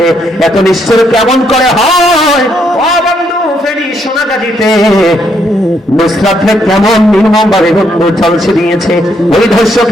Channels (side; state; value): both; normal; correlation 0.74